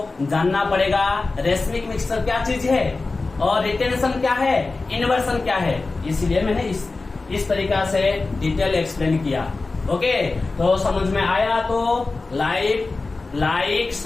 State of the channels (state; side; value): quieter; right; 3.6 dB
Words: जानना पड़ेगा रेशमिक मिक्सर क्या चीज है और रिटेंशन क्या है, इन्वर्सन क्या है। इसलिए मैंने इस तरीका से डिटेल एक्सप्लेन किया। ओके, तो समझ में आया तो लाइक